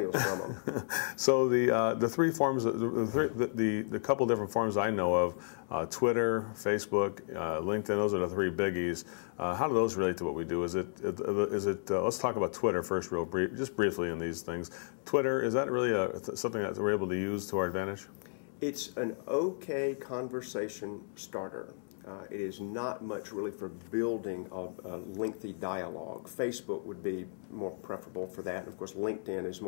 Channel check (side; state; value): right; silent; digital silence